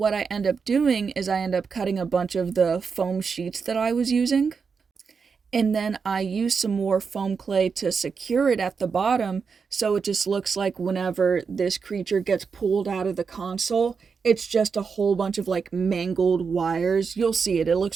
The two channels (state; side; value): quieter; left; 5.6 dB